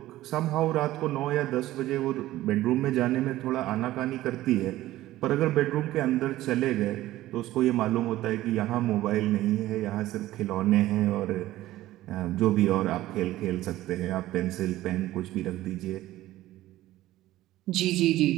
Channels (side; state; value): left; quieter; 15.5 dB